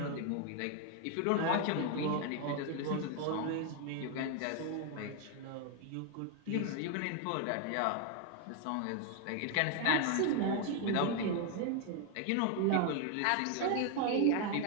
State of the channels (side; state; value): both; different; correlation 0.00